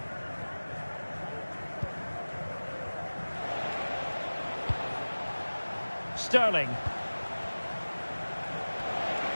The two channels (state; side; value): inverted; both; correlation -1.00